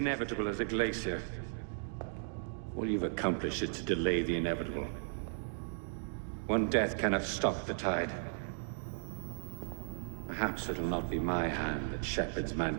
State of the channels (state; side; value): silent; left; digital silence